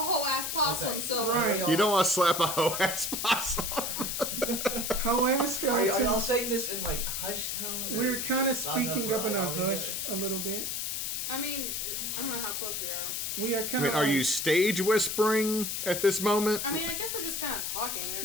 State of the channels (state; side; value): noise; left; hiss, 2 dB below the sound